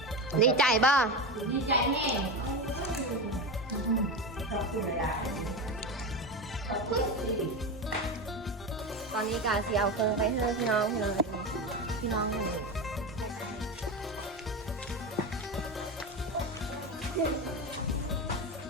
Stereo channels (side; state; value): both; normal; correlation 0.20